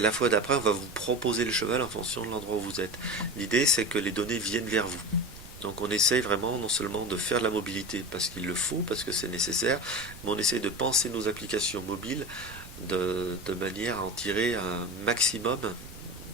fois d'après, on va vous proposer le cheval en fonction de l'endroit où vous êtes. L'idée, c'est que les données viennent vers vous. Donc on essaye vraiment non seulement de faire de la mobilité parce qu'il le faut, parce que c'est nécessaire, mais on essaye de penser nos applications mobiles de manière à en tirer un maximum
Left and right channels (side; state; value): right; noise; rumble, 17 dB below the sound